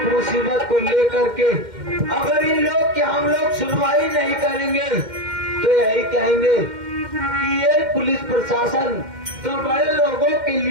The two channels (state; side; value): late; left; 2.1 ms